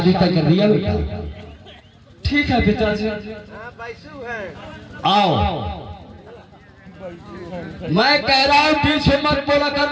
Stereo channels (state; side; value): identical; both; correlation 1.00